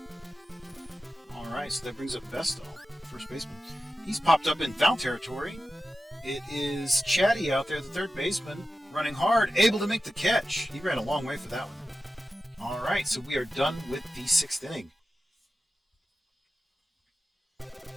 Alright, so that brings up Bestall, first baseman. He's popped up in foul territory. It is Chatty out there, the third baseman, running hard, able to make the catch. He ran a long way for that one. Alright, so we are done with the 6th inning.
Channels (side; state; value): both; normal; correlation 0.92